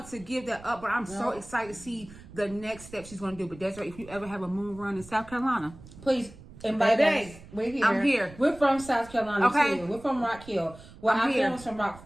to give that up, but I'm so excited to see the next step she's going to do. But Desiree, if you ever have a moon run in South Carolina, please invite us. We're here. I'm here. We're from South Carolina too. We're from Rock Hill. Well, our family's from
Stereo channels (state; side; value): noise; right; rumble, 19 dB below the sound